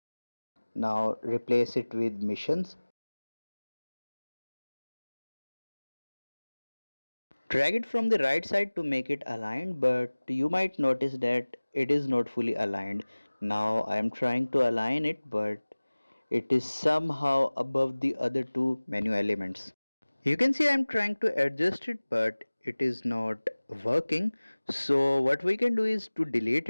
Now replace it with missions. Drag it from the right side to make it aligned, but you might notice that it is not fully aligned. Now I am trying to align it, but it is somehow above the other two menu elements. You can see I am trying to adjust it, but it is not working. So what we can do is to delete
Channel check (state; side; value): inverted; both; correlation -1.00